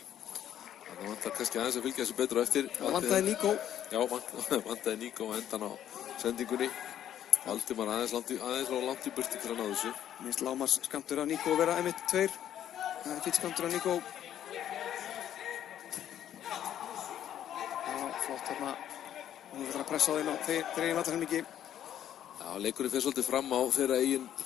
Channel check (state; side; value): quieter; right; 10.8 dB